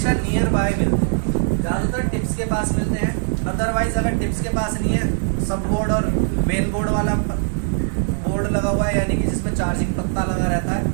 नियर बाय मिलते हैं, ज़्यादातर टिप्स के पास मिलते हैं। अदरवाइज अगर टिप्स के पास नहीं है, सब बोर्ड और मेन बोर्ड वाला बोर्ड लगा हुआ है, यानी कि जिसमें चार्जिंग पत्ता लगा रहता है,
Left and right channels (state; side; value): silent; left; digital silence